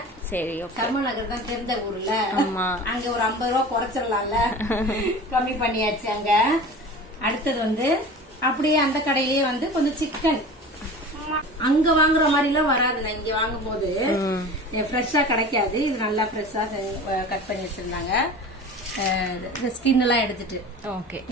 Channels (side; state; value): both; normal; correlation 0.36